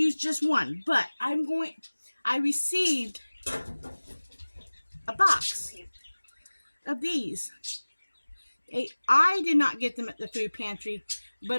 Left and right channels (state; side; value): inverted; both; correlation -1.00